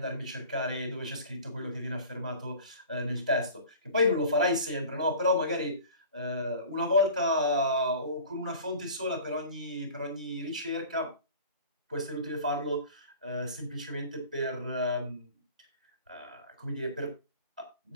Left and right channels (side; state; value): both; inverted; correlation -0.42